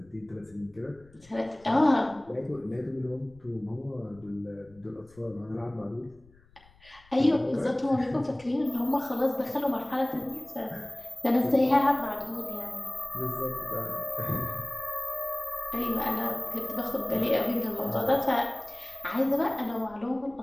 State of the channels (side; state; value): left; noise; rumble, 27 dB below the sound